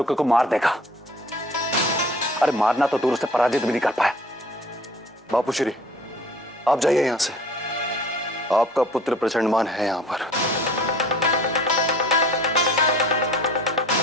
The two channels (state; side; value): normal; both; correlation 0.48